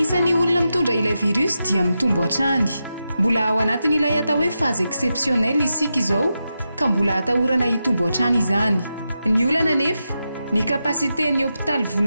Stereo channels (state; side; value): inverted; both; correlation -0.88